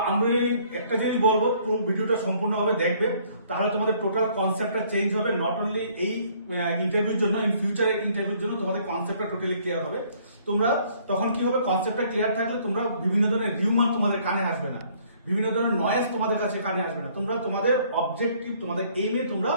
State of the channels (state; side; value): inverted; both; correlation -0.61